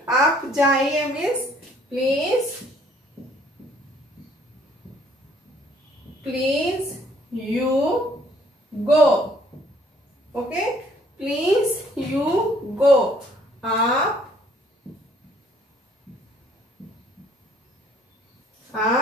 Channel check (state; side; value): normal; both; correlation 0.61